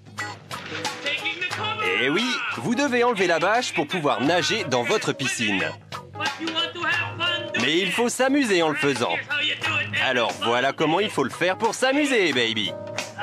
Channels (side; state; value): both; identical; correlation 1.00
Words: Et oui, vous devez enlever la bâche pour pouvoir nager dans votre piscine. Mais il faut s'amuser en le faisant. Alors voilà comment il faut le faire pour s'amuser, baby.